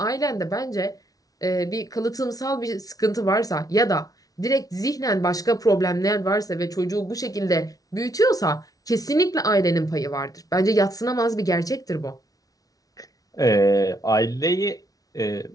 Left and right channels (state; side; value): late; right; 0.18 ms